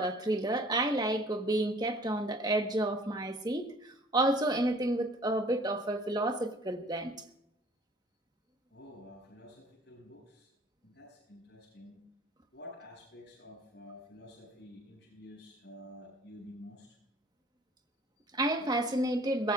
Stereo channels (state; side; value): normal; both; correlation 0.53